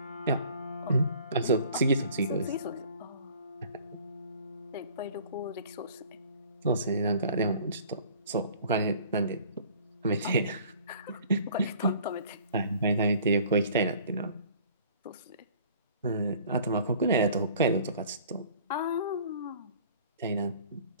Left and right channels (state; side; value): inverted; both; correlation -0.50